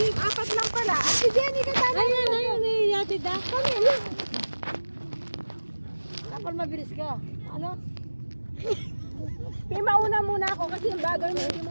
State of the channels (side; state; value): both; inverted; correlation -1.00